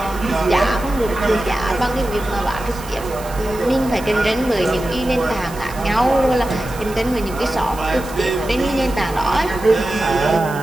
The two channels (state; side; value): noise; right; hiss, 17 dB below the sound